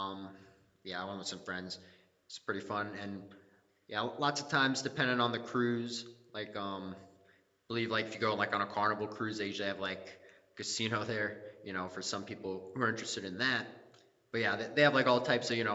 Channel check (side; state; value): both; identical; correlation 1.00